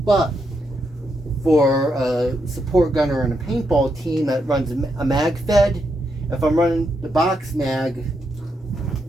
for a support gunner and a paintball team that runs a mag fed, if I'm running the box mag,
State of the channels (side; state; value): both; normal; correlation 0.81